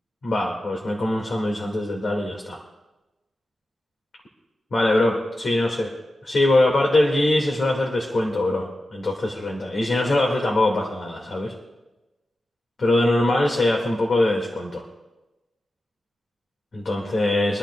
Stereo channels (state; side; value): normal; both; correlation 0.92